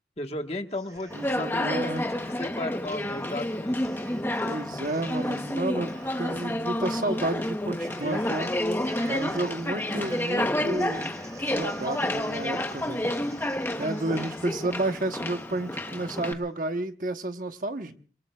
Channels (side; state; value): both; normal; correlation 0.62